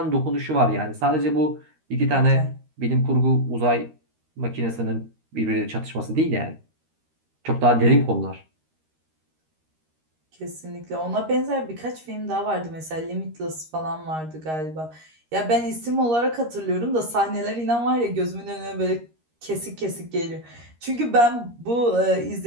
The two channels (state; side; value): late; left; 13 ms